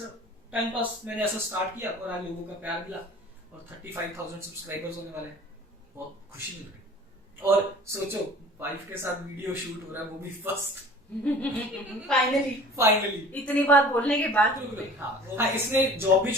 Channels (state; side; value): normal; both; correlation 0.45